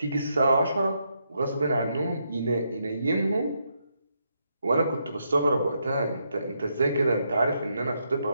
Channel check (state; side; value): inverted; both; correlation -0.79